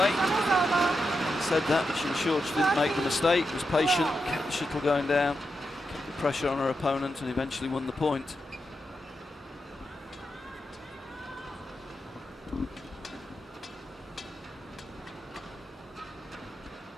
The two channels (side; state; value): both; normal; correlation 0.86